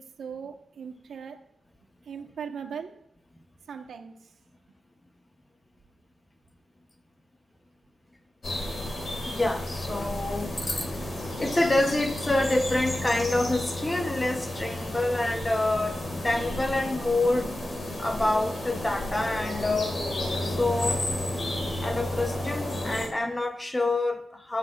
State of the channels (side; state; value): both; normal; correlation 0.93